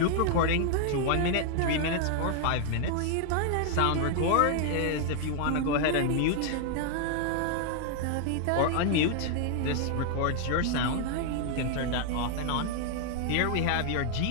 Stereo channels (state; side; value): different; both; correlation 0.00